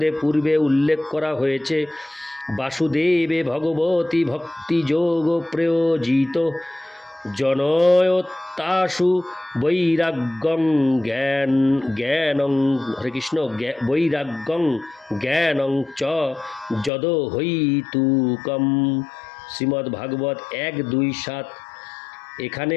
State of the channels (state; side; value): drops out; right; at 16.9 s